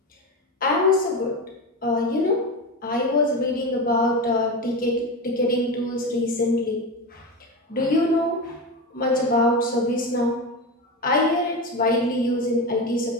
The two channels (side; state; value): both; normal; correlation 0.20